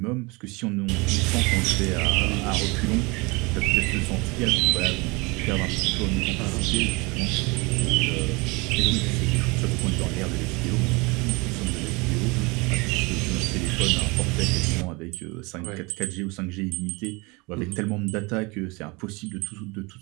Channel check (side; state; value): left; quieter; 26.6 dB